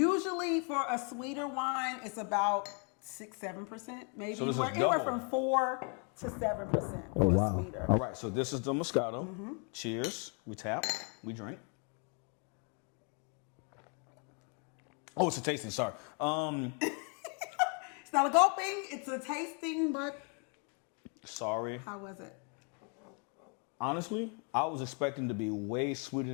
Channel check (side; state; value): right; quieter; 38.0 dB